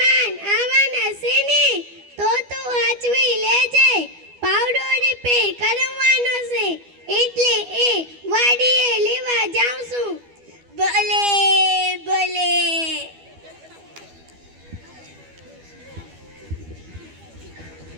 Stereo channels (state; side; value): late; left; 12 ms